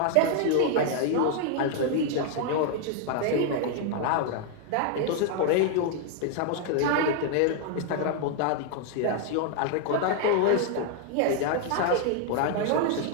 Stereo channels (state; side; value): different; both; correlation 0.00